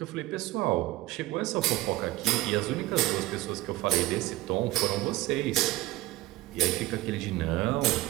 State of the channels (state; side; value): quieter; left; 17.7 dB